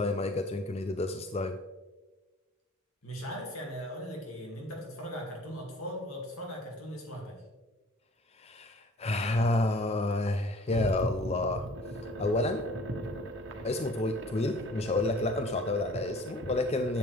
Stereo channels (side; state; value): both; normal; correlation 0.49